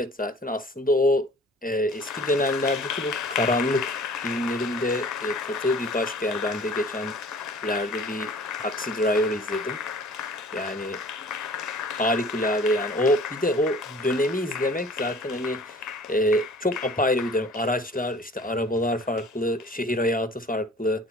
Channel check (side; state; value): both; normal; correlation 0.48